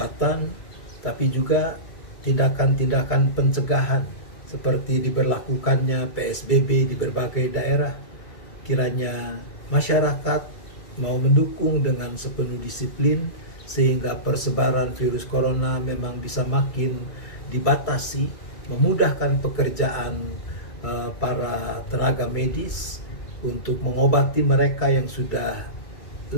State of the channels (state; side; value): late; right; 2.3 ms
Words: tapi juga tindakan-tindakan pencegahan seperti diberlakukannya PSBB di berbagai daerah. Kiranya masyarakat mau mendukung dengan sepenuh disiplin sehingga persebaran virus corona memang bisa makin dibatasi, memudahkan pekerjaan para tenaga medis untuk mengobati mereka yang sudah